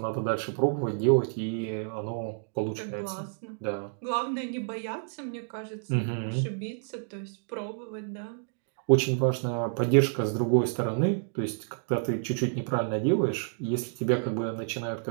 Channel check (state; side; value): silent; left; digital silence